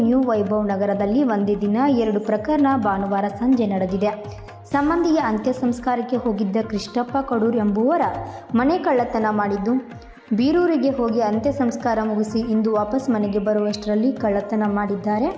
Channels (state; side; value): identical; both; correlation 1.00